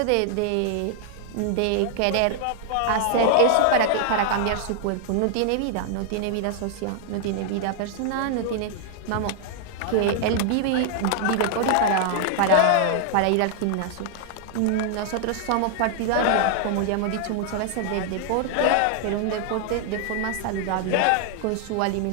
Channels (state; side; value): different; both; correlation 0.00